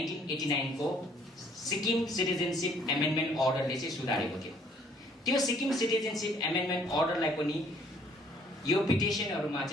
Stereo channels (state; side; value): normal; both; correlation 0.61